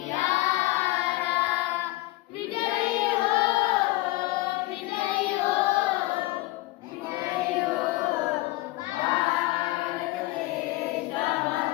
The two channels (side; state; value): right; quieter; 19.5 dB